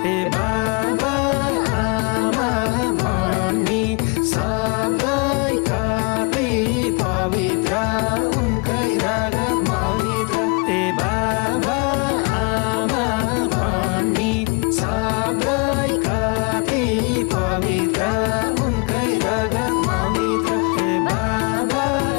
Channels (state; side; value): quieter; right; 31.3 dB